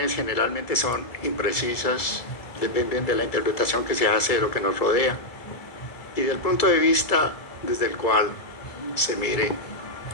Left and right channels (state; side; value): late; right; 2.0 ms